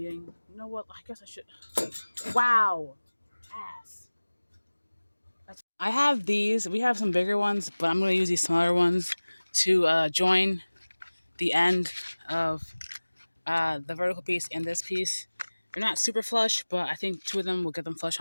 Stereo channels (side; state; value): both; inverted; correlation -1.00